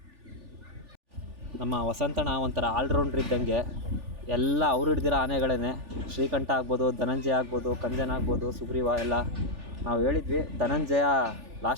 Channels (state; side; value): late; left; 3.4 ms